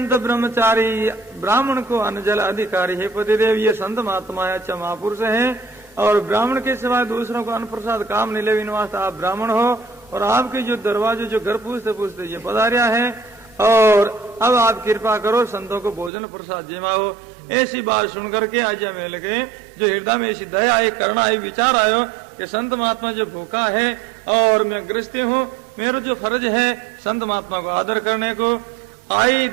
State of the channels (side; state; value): left; drops out; at 16.1 s